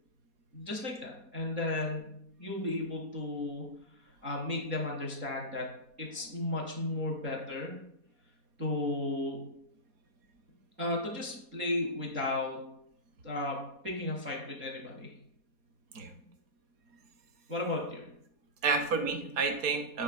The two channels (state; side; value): late; left; 4.2 ms